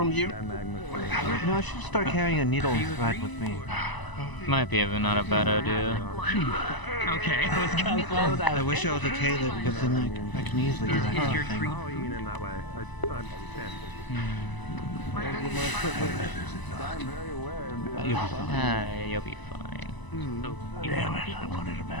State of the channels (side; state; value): right; late; 1.0 ms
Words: you. You know, I should start carrying a needle and thread with me. Might be not a bad idea. Okay, let's go. I wish I was a tailor because then I can easily do that kind of thing. You'll be fine. Damn it, I wanted a